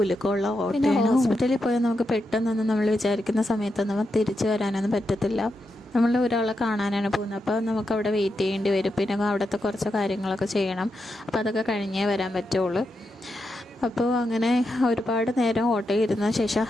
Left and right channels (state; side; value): normal; both; correlation 0.86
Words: ഓട്ടോയാണ്. ഹോസ്പിറ്റലിൽ പോയാൽ നമുക്ക് പെട്ടെന്നൊന്നും നമ്മൾ വിചാരിക്കുന്ന സമയത്തൊന്നും തിരിച്ചു വരാനൊന്നും പറ്റത്തില്ല. നമ്മൾ ഒരാളെ കാണാനാണ് പോകുന്നത്, അപ്പോൾ നമുക്ക് അവിടെ വെയിറ്റ് ചെയ്യേണ്ടി വരും. പിന്നെ അവിടുത്തെ കുറച്ച് കാര്യങ്ങളൊക്കെ ചെയ്യണം. അപ്പോൾ അതൊക്കെ കഴിഞ്ഞേ വരാൻ പറ്റുള്ളൂ. അപ്പോൾ അങ്ങനെ ഒരുപാട് നേരം ഓട്ടോ ഇരുന്ന ശേഷം